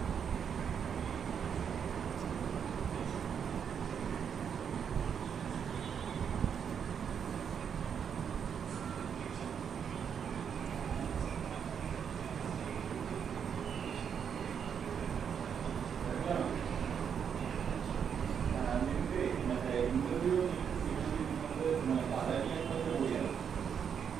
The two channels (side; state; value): left; quieter; 7.5 dB